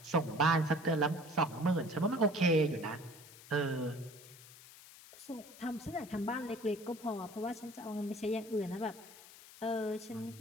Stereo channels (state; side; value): noise; left; hiss, 19 dB below the sound